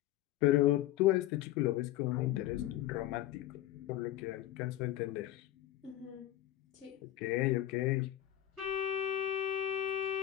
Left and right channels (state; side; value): quieter; right; 13.9 dB